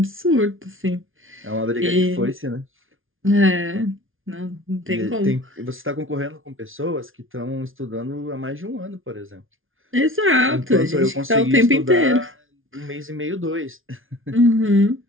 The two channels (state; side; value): late; left; 0.58 ms